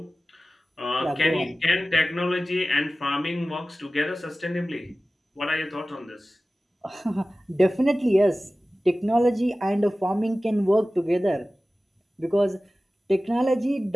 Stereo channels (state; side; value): normal; both; correlation 0.96